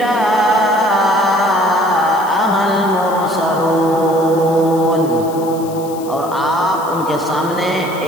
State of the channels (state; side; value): noise; left; hiss, 19 dB below the sound